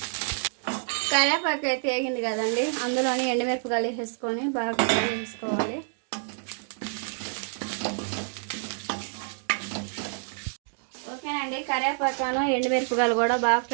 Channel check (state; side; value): silent; left; digital silence